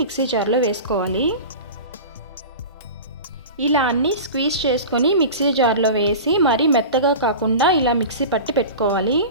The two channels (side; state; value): both; inverted; correlation -0.32